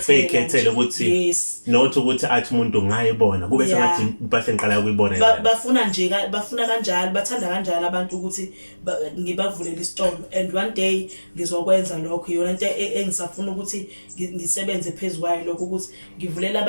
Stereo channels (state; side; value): inverted; both; correlation -1.00